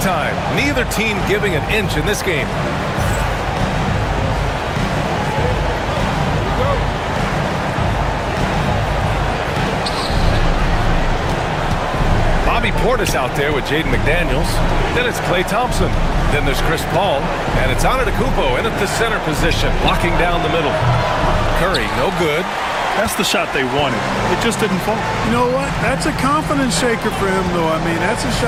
Neither team giving an inch in this game. Bobby Portis out there with Jaden McDaniels. Then it's Klay Thompson. Then there's Chris Paul. And it's Antetokounmpo in at the center position, blocking down the middle. Curry, no good. That's the shot they wanted. It just didn't fall. You know what? That's a confidence shaker for him, though. I mean, that's a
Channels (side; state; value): both; identical; correlation 1.00